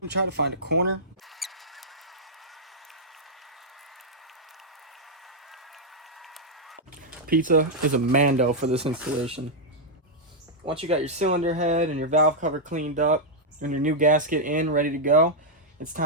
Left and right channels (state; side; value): normal; both; correlation -0.05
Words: try to find a corner. Pizza is a mando for this installation. Once you got your cylinder head and your valve cover cleaned up and your new gasket in, ready to go, it's